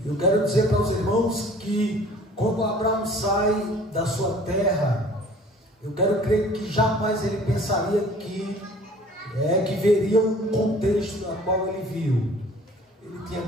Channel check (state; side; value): normal; both; correlation 0.49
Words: Eu quero dizer para os irmãos que quando Abraão sai da sua terra, eu quero crer que jamais ele pensaria que veria um contexto no qual ele viu. Ele tinha